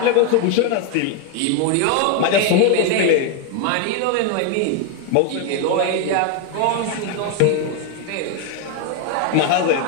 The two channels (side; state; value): both; different; correlation 0.01